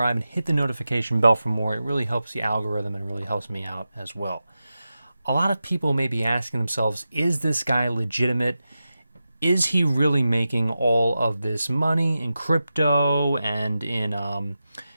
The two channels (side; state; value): both; inverted; correlation -0.92